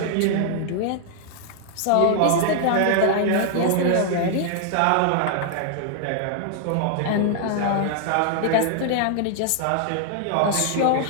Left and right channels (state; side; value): different; both; correlation -0.01